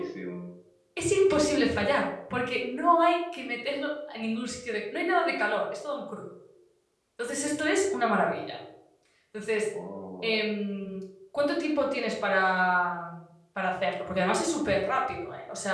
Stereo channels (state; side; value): identical; both; correlation 1.00